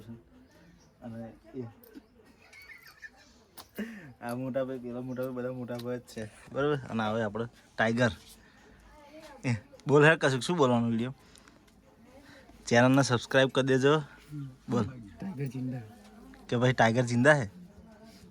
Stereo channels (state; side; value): identical; both; correlation 1.00